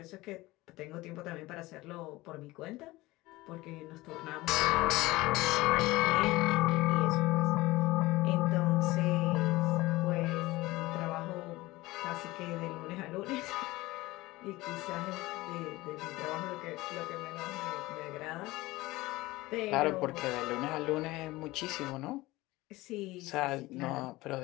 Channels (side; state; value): right; quieter; 19.5 dB